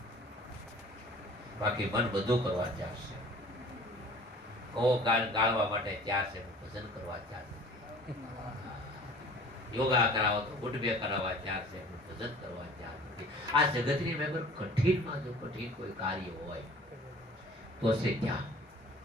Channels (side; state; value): both; normal; correlation 0.47